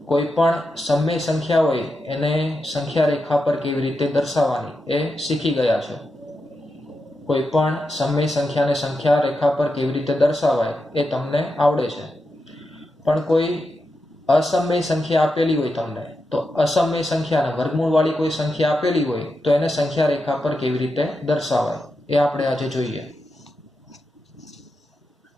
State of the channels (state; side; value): normal; both; correlation 0.87